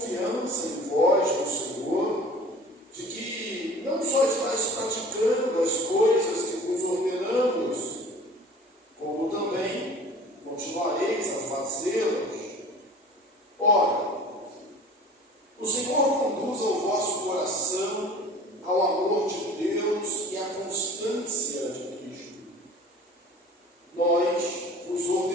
em vós, no Senhor, de que não só estáis praticando as coisas que vos ordenamos, como também continuareis a fazê-las. Ora, o Senhor conduza o vosso coração ao amor de Deus e à constância de Cristo. Nós vos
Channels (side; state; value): both; normal; correlation 0.44